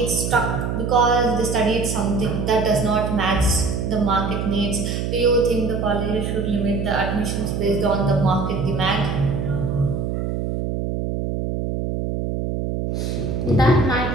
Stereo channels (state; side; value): noise; right; hum, 2 dB below the sound